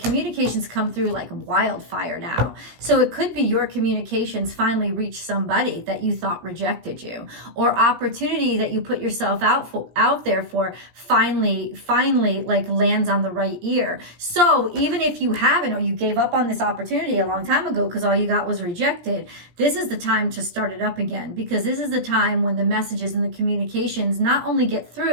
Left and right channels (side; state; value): left; late; 17 ms